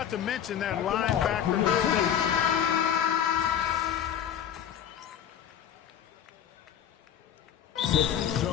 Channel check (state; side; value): quieter; right; 9.4 dB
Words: to mention that linebacker movement.